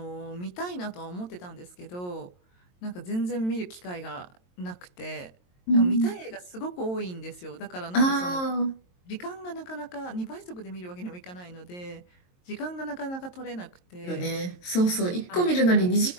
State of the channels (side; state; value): right; late; 22 ms